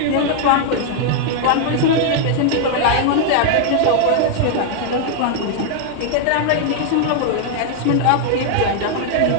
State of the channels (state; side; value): different; both; correlation 0.00